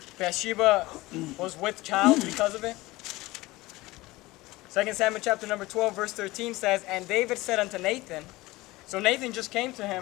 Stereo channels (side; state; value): right; quieter; 20.0 dB